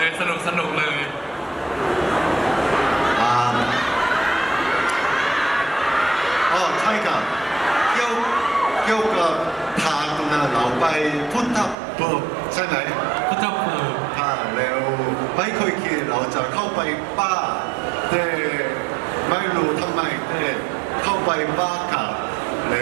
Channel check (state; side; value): drops out; left; at 11.8 s